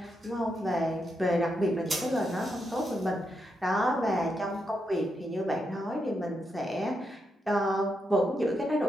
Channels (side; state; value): both; normal; correlation 0.83